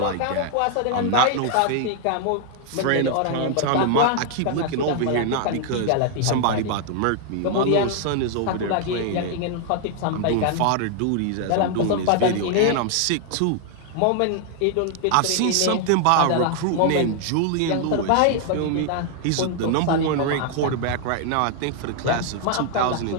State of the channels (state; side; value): different; both; correlation 0.00